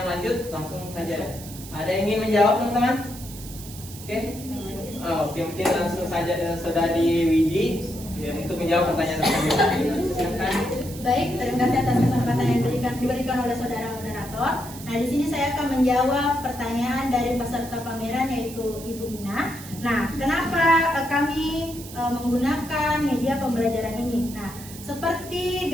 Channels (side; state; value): right; noise; hiss, 15 dB below the sound